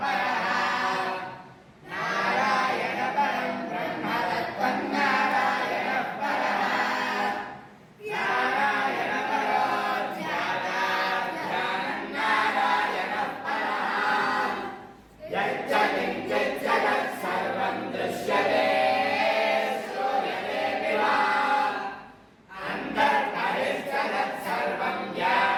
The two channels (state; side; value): identical; both; correlation 1.00